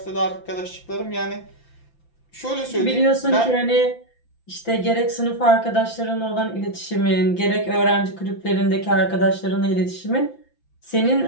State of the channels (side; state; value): right; late; 5.9 ms